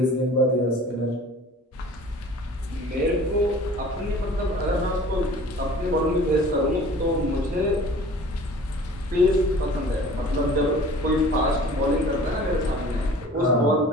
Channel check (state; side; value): normal; both; correlation 0.46